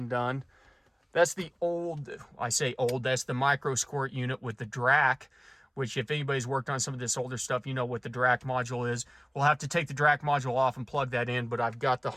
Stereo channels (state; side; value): identical; both; correlation 1.00